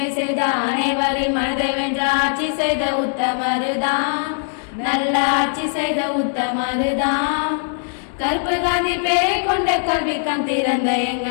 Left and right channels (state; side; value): silent; right; 66 dB below the other